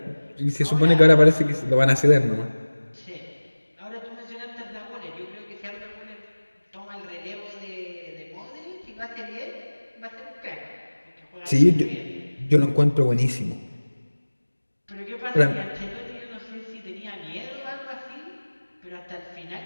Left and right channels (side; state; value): both; inverted; correlation -1.00